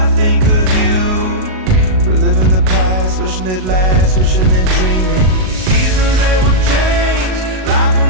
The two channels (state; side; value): late; left; 38 ms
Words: I think of you, reliving the past, wishing it lasts, wishing and dreaming. Seasons, they will change, life